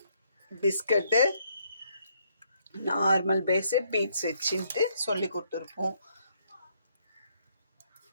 biscuit, normal base, beads வச்சுட்டு சொல்லி கொடுத்துருப்போம்.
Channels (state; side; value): inverted; both; correlation -0.70